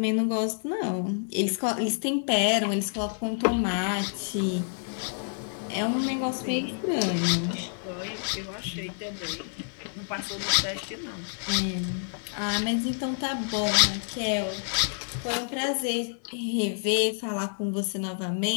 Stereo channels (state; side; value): silent; right; digital silence